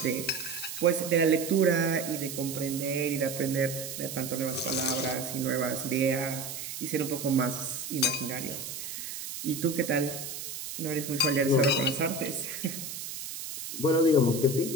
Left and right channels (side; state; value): right; noise; hiss, 8 dB below the sound